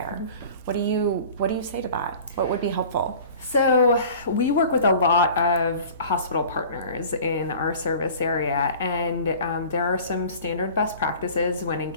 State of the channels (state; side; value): inverted; both; correlation -0.43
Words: What do you say to that? What would be helpful? So we work with a lot of hospital partners in our service area, and there are some standard best practices when